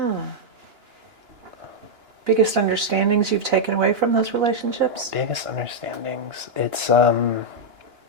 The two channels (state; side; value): late; left; 2.9 ms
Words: Biggest understandings you've taken away from those relationships? Biggest understandings.